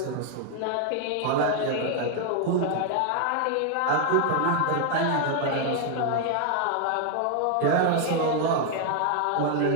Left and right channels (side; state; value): both; different; correlation 0.00